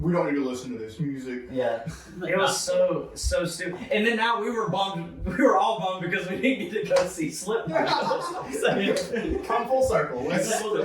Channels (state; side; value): identical; both; correlation 1.00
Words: don't need to listen to this music. Yeah. It was so stupid. And then now we were bummed. We were all bummed because we didn't get to go see Slipknot. Come full circle.